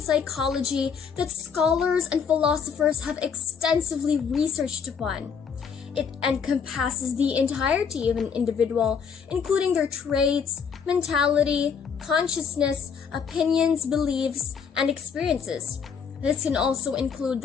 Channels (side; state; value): right; quieter; 6.5 dB